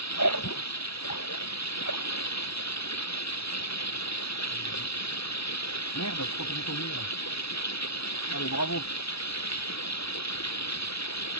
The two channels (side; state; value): right; late; 0.77 ms